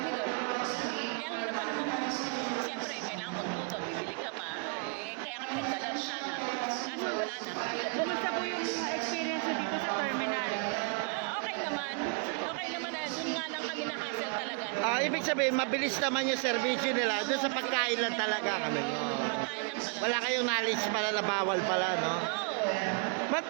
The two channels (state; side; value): quieter; left; 34.9 dB